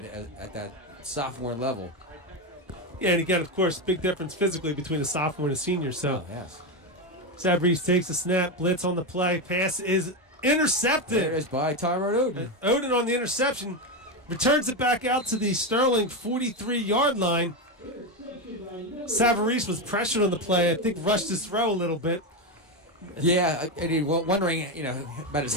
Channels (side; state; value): both; normal; correlation 0.11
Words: at that sophomore level. Yeah, and again, of course, big difference physically between a sophomore and a senior. So, yes. Sabrese takes a snap, blitz on the play, pass is intercepted. There it is by Tyrone Oden. Oden on the interception returns it back out to the Sterling 43-yard line. Savarese was pressured on the play. I think rushed his throw a little bit. Yeah, and he wondering, about his